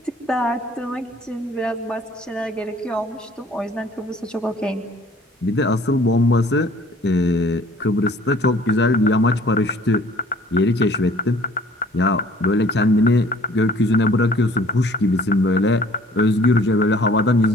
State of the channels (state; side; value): normal; both; correlation 0.54